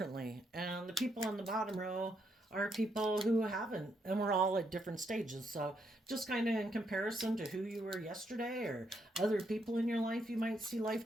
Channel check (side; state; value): both; normal; correlation 0.77